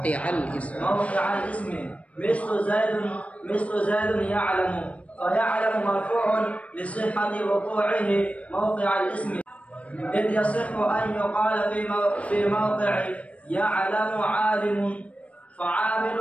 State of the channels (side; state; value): right; late; 0.065 ms